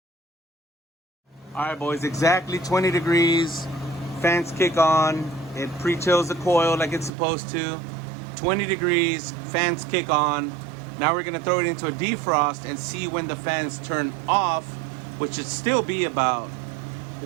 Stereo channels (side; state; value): left; drops out; at 7.1 s